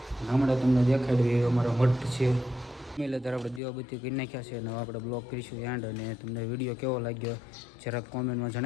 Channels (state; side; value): drops out; right; at 3.6 s